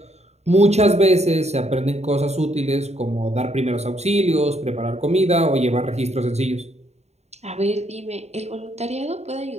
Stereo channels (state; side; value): late; left; 0.32 ms